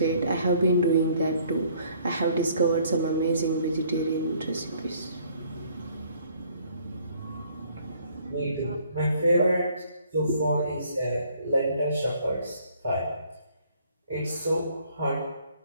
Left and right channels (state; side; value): inverted; both; correlation -0.61